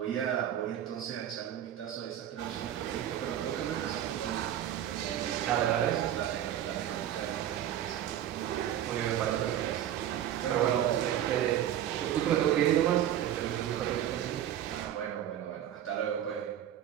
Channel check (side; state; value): left; quieter; 11.2 dB